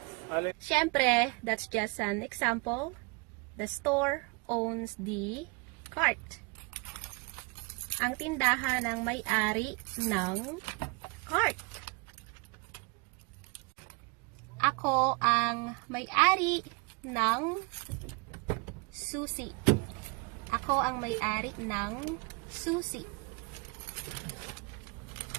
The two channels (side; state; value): left; quieter; 30.2 dB